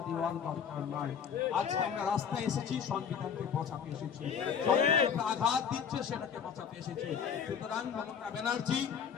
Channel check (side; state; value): right; quieter; 7.3 dB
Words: দেওয়ার দরকার নয়। আজকে আমরা রাস্তায় এসেছি সংবিধানকে বাঁচাতে এসেছি, আঘাত দিচ্ছে সেটাকে বাঁচাতে এসেছি। সুতরাং মমতা ব্যানার্জি